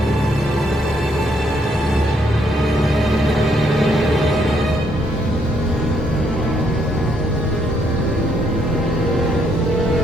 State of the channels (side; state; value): both; normal; correlation 0.72